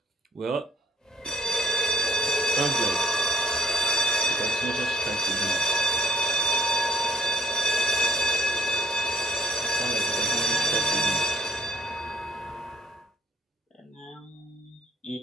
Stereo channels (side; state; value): both; normal; correlation 0.64